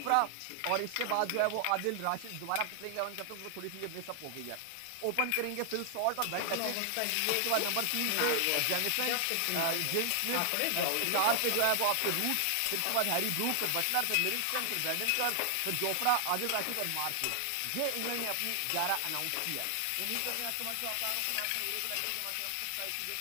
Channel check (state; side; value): different; both; correlation 0.00